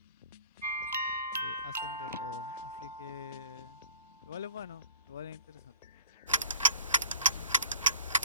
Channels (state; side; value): inverted; both; correlation -0.43